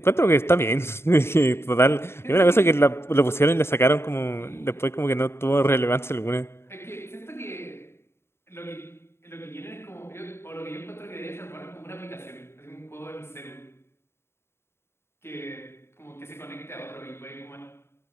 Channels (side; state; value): right; late; 0.12 ms